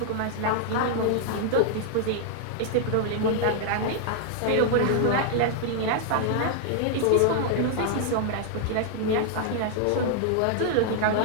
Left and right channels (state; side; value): different; both; correlation 0.00